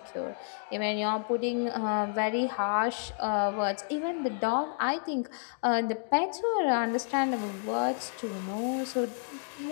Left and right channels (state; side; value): silent; right; digital silence